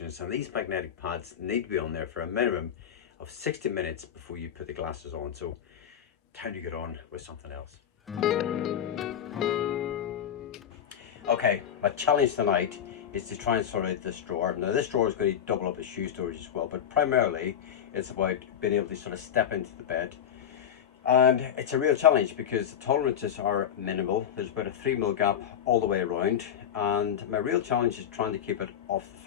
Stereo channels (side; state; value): right; quieter; 9.2 dB